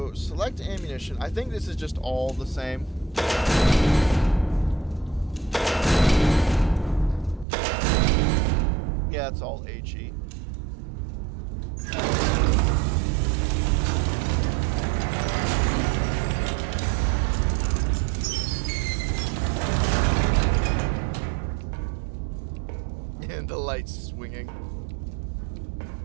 select ammunition. I think this is just all the same. Yeah, it's all HE. And the lights swinging.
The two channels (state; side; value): drops out; left; at 7.5 s